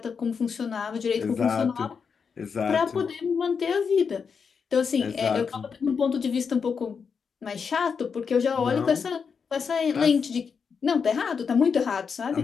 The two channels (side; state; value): right; quieter; 6.0 dB